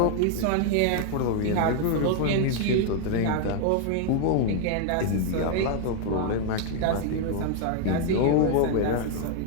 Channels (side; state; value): both; different; correlation 0.00